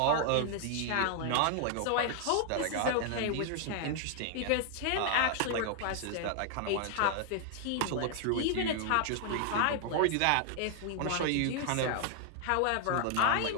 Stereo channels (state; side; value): different; both; correlation 0.00